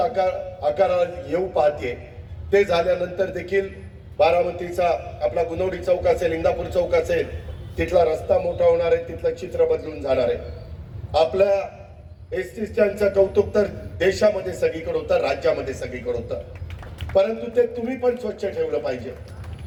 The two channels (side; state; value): both; identical; correlation 1.00